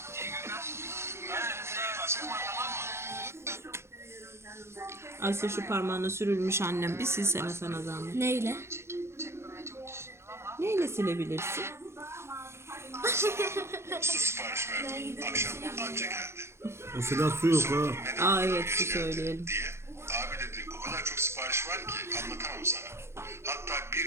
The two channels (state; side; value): late; left; 0.13 ms